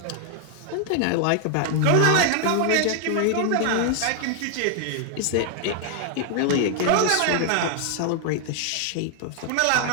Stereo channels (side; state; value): both; different; correlation 0.00